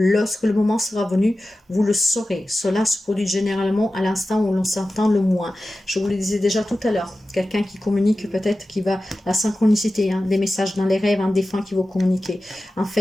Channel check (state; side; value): normal; both; correlation 0.94